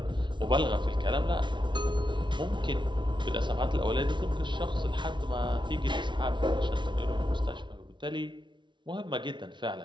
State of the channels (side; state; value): left; late; 0.23 ms